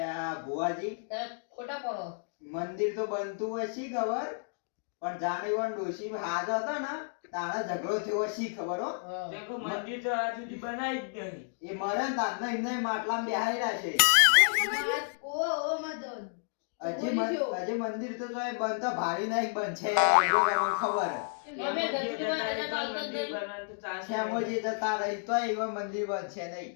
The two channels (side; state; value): right; silent; digital silence